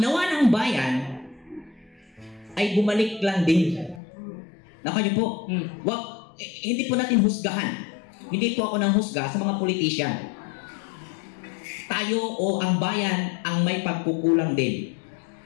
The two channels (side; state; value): right; drops out; at 4.0 s